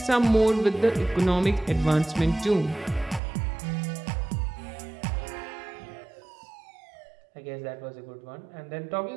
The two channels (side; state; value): left; drops out; at 3.2 s